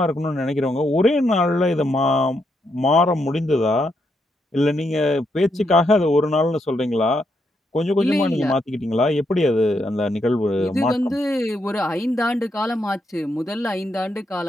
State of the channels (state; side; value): normal; both; correlation 0.79